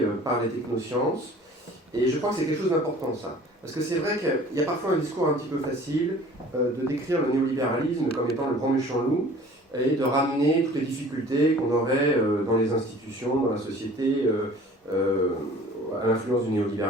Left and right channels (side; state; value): both; normal; correlation 0.47